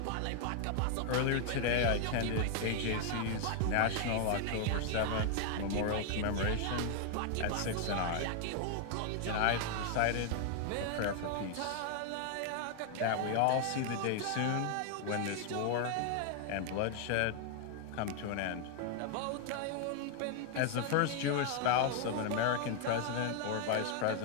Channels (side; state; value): both; different; correlation 0.00